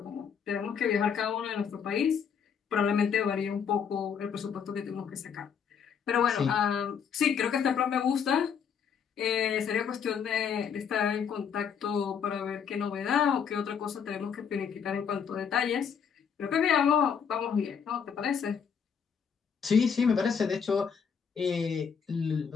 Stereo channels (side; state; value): right; quieter; 7.0 dB